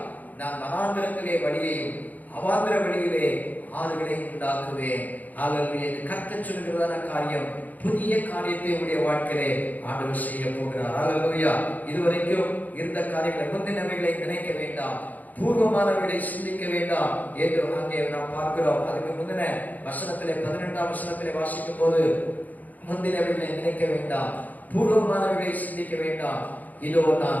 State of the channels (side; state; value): right; late; 0.080 ms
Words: நான் வனாந்திரத்திலே வழியையும் அவாந்திர வழியிலே ஆறுகளை உண்டாக்குவேன். அல்லேலூயா. கர்த்தர் சொல்கிறதான காரியம், புதிய காரியத்தை உடைய வாழ்க்கையிலே ஆண்டவர் செய்ய போகிறார். அல்லேலூயா. இதுவரைக்கும் இருந்த காரியங்களை, முந்தினவைகளை நினைக்க வேண்டாம், பூர்வமானவைகளை சிந்திக்க வேண்டாம் என்று அங்கே நாம் பார்க்கிறோம். அதுக்கு முந்தின வசனத்திலே 12ஆம் வசனத்திலே வாசிக்கும் போது, முந்தினவைகளை நினைக்க வேண்டாம், பூர்வமானவைகளை சிந்திக்க வேண்டாம், இதோ